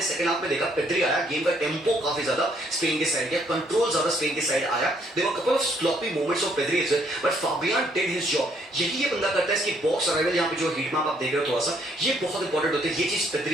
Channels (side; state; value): both; normal; correlation 0.68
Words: सेकंड हाफ में देखा पेद्री आया, गेम का टेम्पो काफी ज्यादा स्पेन के साइड गया, कंट्रोल ज्यादा स्पेन के साइड आया। There were couple of sloppy moments of Pedri as well, but Fabian did his job. यही ये बंदा करता है। इसकी बॉक्स अराइवल यहाँ पे जो हीट मैप आप देख रहे हो थोड़ा सा, ये बहुत इंपॉर्टेंट होते हैं। ये चीज